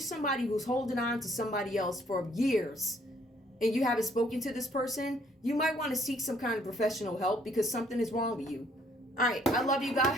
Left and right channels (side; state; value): both; normal; correlation 0.64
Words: who's holding on to somebody else for years and you haven't spoken to this person, you might want to seek some kind of professional help because something is wrong with you. All right. I love you